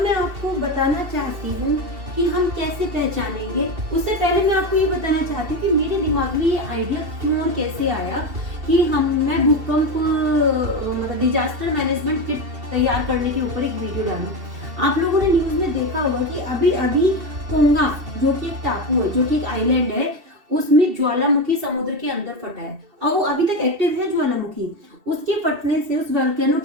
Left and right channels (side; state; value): left; late; 2.7 ms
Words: आपको बताना चाहती हूँ कि हम कैसे पहचानेंगे। उससे पहले मैं आपको ये बताना चाहती हूँ कि मेरे दिमाग में ये आइडिया क्यों और कैसे आया कि मैं भूकंप डिजास्टर मैनेजमेंट किट तैयार करने के ऊपर एक वीडियो डालूं। आप लोगों ने न्यूज में देखा होगा कि अभी अभी कोंगा, जो कि एक टापू है, जो कि एक आइलैंड है, उसमें ज्वालामुखी समुद्र के अंदर फटा है और वो अभी तक एक्टिव है ज्वालामुखी। उसके फटने से, उस वोल्केनो